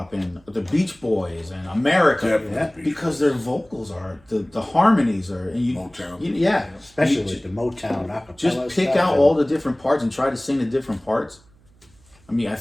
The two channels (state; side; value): noise; right; hum, 30 dB below the sound